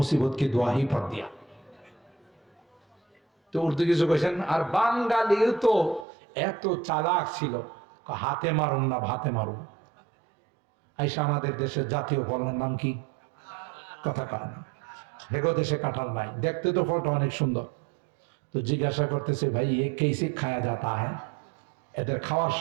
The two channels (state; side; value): drops out; left; at 6.1 s